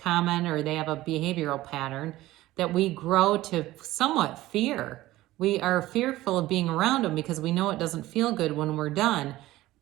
or they have a behavioral pattern that we grow to somewhat fear. We are fearful of being around them because we know it doesn't feel good when we're done.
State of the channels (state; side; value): quieter; left; 16.7 dB